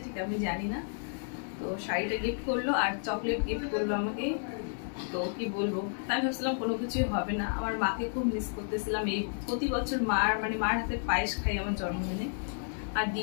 ঠিক আমি জানি না। তো শাড়িটা গিফট করলো আর চকলেট গিফট করলো আমাকে। তো কি বলবো, তাই ভাবছিলাম কোনো কিছুই হবে না। আমার মাকে খুব মিস করতেছিলাম। এই প্রতি বছর মার হাতে পায়েস খাই আমার জন্মদিনে। আর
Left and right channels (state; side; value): silent; right; digital silence